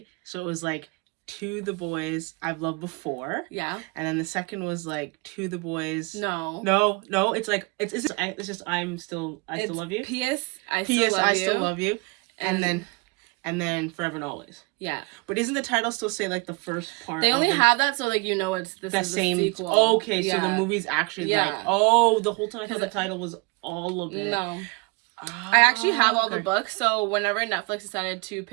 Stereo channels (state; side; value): quieter; left; 27.8 dB